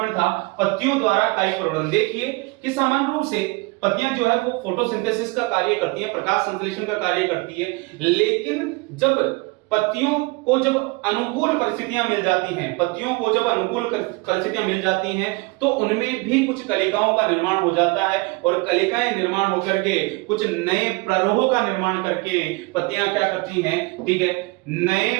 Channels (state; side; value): quieter; left; 25.6 dB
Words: था, पत्तियों द्वारा कायिक प्रवर्धन। देखिए कि सामान्य रूप से पत्तियां जो है वो फोटोसिंथेसिस का कार्य करती है, प्रकाश संश्लेषण का कार्य करती है, लेकिन जब पत्तियों को जब अनुकूल परिस्थितियां मिल जाती हैं, पत्तियों को जब अनुकूल परिस्थितियां मिल जाती हैं तो उनमें भी कुछ कलिकाओं का निर्माण हो जाता है, और कलिकाएं निर्माण होकर के कुछ नए प्ररोह का निर्माण करके पत्तियां क्या करती हैं, ठीक है, नए